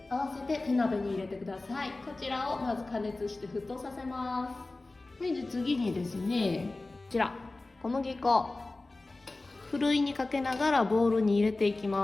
合わせて手鍋に入れてください。こちらをまず加熱して沸騰させます。で次にですね、こちら小麦粉ふるいにかけながらボウルに入れていき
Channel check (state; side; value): quieter; right; 3.1 dB